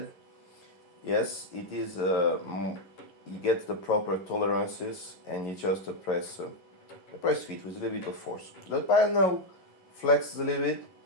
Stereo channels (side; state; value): right; late; 11 ms